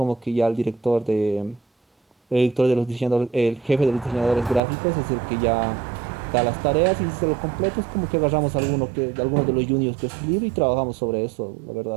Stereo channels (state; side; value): drops out; left; at 4.6 s